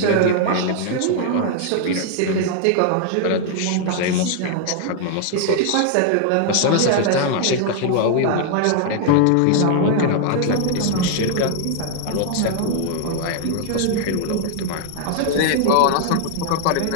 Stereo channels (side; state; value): both; different; correlation 0.00